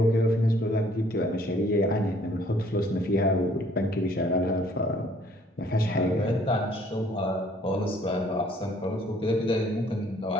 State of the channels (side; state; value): both; normal; correlation 0.60